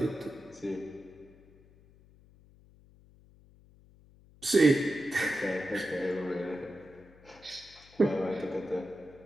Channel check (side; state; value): left; noise; hum, 26 dB below the sound